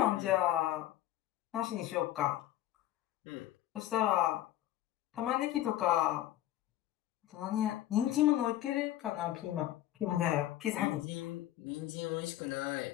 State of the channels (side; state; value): right; quieter; 13.5 dB